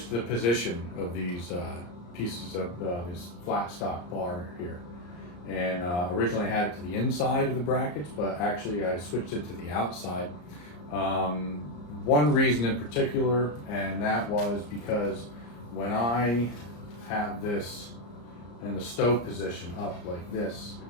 the position of these pieces of this flat stock bar here. And originally I had it to the inside of the brackets, but actually I switched it to the outside. One reason in particular, and that was because when I have this in the stove position up like this,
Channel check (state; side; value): late; right; 34 ms